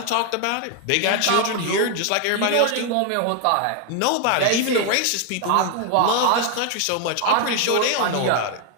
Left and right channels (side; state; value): both; different; correlation 0.00